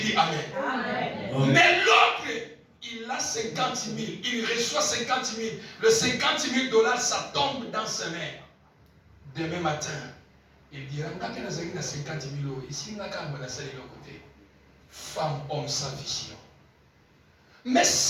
Amen? Amen. Mais l'autre, il a 50 000, il reçoit 50 000. Le 50 000 $, ça tombe dans ses mains. Demain matin, il dira, quand il a 50 000 €, ici, il a quand même côté. Femme, homme sans vision. Mais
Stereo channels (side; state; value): both; identical; correlation 1.00